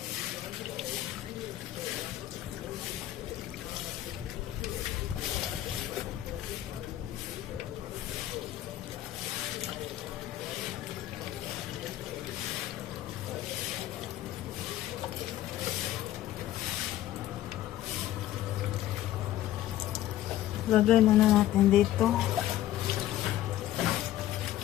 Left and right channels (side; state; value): right; quieter; 13.5 dB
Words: Lagay muna natin dito.